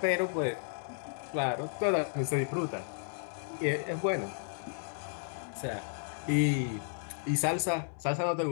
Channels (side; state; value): right; silent; digital silence